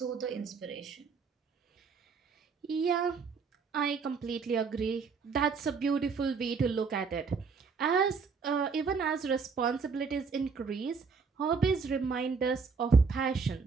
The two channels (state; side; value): quieter; left; 5.2 dB